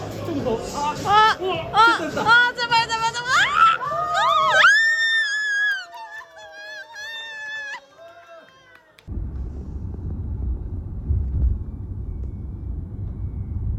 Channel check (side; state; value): both; identical; correlation 1.00